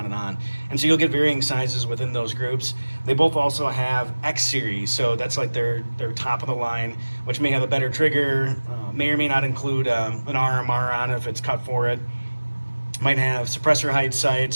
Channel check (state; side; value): inverted; both; correlation -1.00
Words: And so you'll get varying sizes within those groups. They both also have X series, so that's like their top of the line, which may have a better trigger, may or may not include an RMR on it if it's cut for it. Might have suppressor height